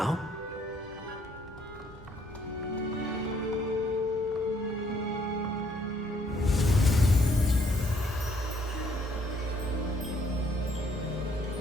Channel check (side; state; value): both; normal; correlation 0.67